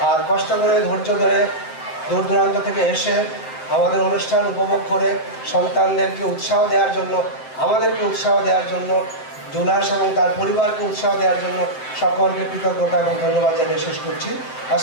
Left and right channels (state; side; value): late; right; 7.7 ms